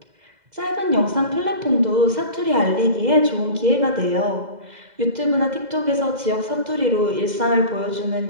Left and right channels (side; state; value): left; late; 2.0 ms